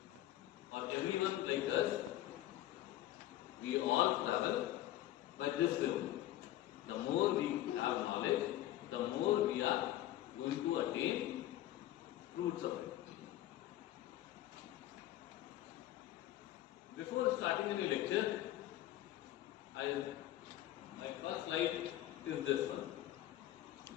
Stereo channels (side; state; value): right; quieter; 14.1 dB